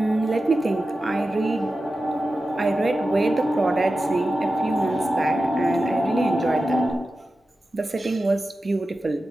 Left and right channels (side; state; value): both; normal; correlation 0.93